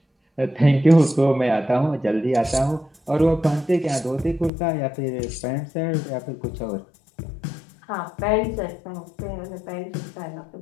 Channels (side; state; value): right; drops out; at 4.5 s